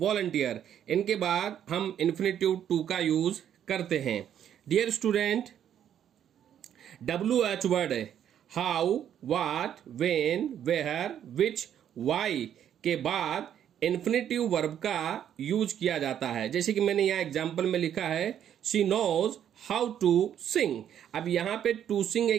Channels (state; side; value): quieter; left; 9.8 dB